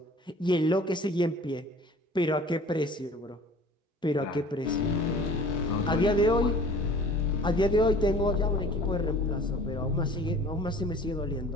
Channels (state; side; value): normal; both; correlation 0.47